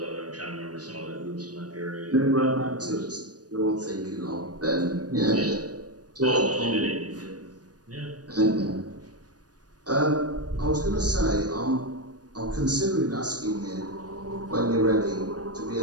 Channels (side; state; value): left; late; 0.68 ms